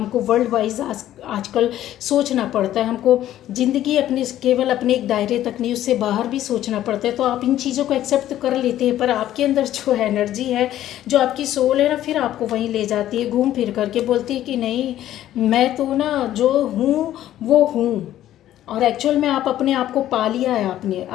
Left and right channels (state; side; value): quieter; right; 12.7 dB